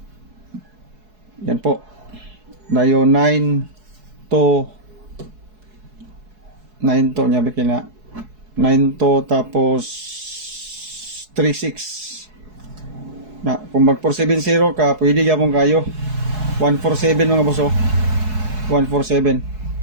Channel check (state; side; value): late; left; 4.7 ms